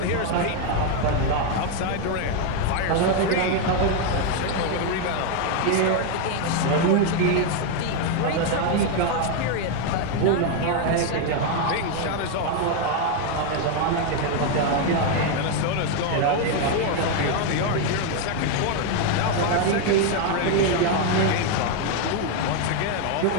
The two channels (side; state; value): both; different; correlation 0.01